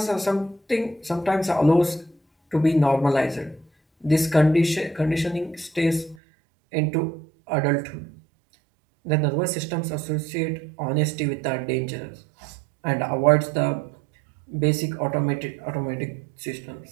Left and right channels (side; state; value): left; drops out; at 6.2 s